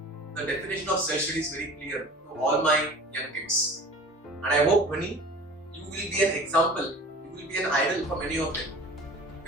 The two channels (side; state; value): both; normal; correlation 0.42